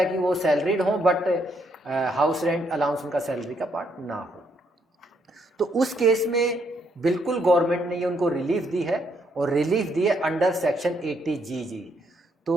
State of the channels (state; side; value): normal; both; correlation 0.73